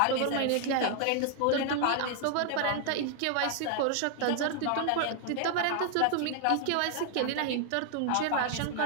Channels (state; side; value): different; both; correlation 0.00